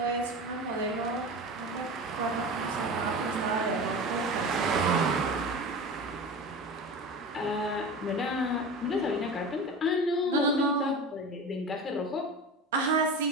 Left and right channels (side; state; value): both; normal; correlation 0.30